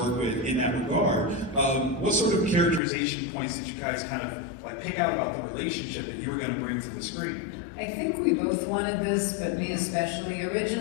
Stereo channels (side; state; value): right; drops out; at 2.8 s